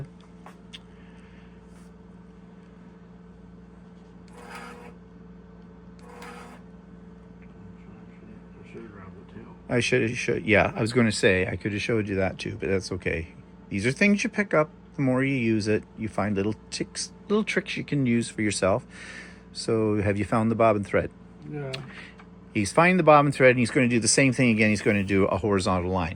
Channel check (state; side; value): identical; both; correlation 1.00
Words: I should, yeah, I was going to say, I could have showed you that too, but that's okay. These are things you pick up. The more you use it, you find little tricks you can use for yourself. So have you found the bobbin thread? Yeah. He's finding the bobbin thread and he's going to do the same thing again. He's going to do a horizontal